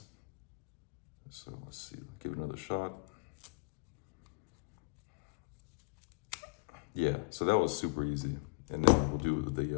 So let's see, give it another shot. Yeah, so that was super easy. And then we'll do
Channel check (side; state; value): right; quieter; 33.4 dB